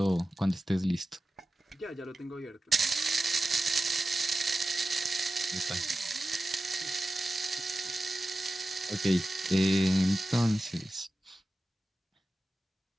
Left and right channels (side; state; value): both; normal; correlation 0.94